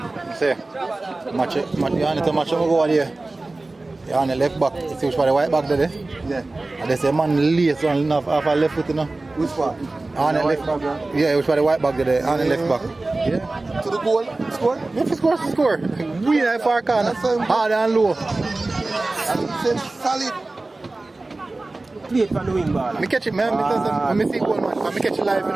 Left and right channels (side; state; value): left; quieter; 3.1 dB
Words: See, match you need to match him go there. You on the left back. You see which part the white back there? Yeah. And there's a man lace on off a left foot, you know. Which part? On the left back, yeah, which part the white back there? On the left back. Yeah. To the goal, score? If you score. We in far corner. Hard and low. And solid. Play it from the wing ball. Me catch it, man. Let me see goal, man. Me catch it live, you